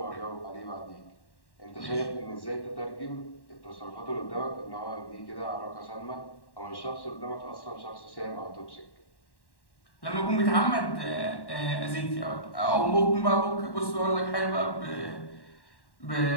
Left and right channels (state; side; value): late; right; 1.1 ms